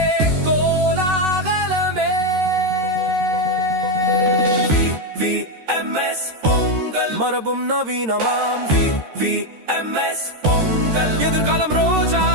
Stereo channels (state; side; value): late; left; 13 ms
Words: கோலாகலமே VVMS பொங்கல் மரபும் நவீனமாம் VVMS பொங்கல் எதிர்காலம்